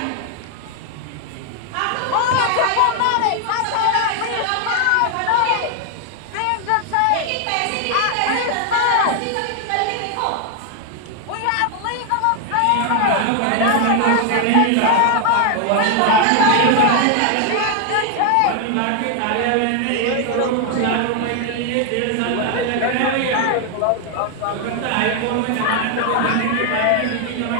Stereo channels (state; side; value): different; both; correlation 0.01